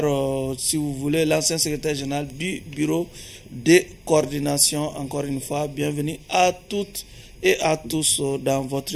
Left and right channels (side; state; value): both; identical; correlation 1.00